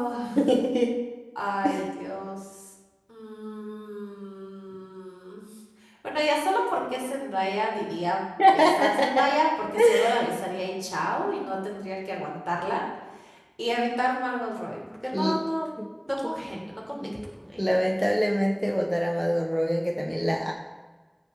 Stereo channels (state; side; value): identical; both; correlation 1.00